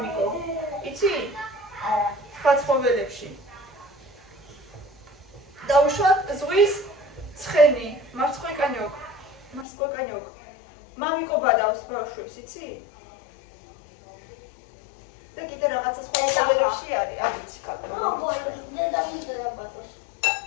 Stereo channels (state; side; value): drops out; right; at 9.7 s